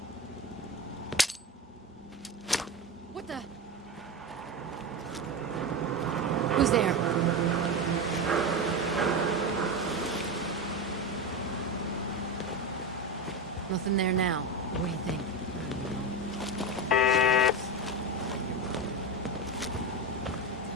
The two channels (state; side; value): normal; both; correlation 0.18